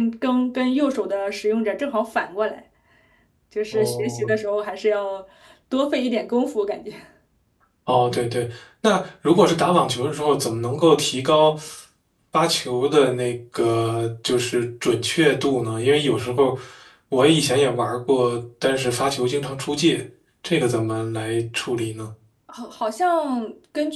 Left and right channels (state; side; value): identical; both; correlation 1.00